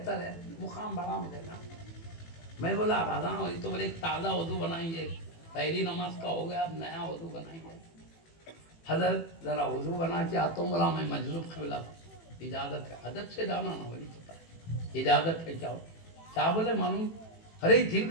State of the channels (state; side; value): late; right; 18 ms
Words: ہے، مقام بڑا ملے گا. میں بولا بھاگا ہوئی تو بولے تازہ وضو بنائیں گے، پہلی نماز کا ہو گیا، اب نیا وضو بنائیں گے. حضرت ذرا وضو بنا کے آتا ہوں. بولا میں مجذوب قبلہ، اجازت ہے؟ ادب سے جانا نہ بولی پتا ہے اجازت ہے کیا؟ کیا بولے معلوم؟ ارے دل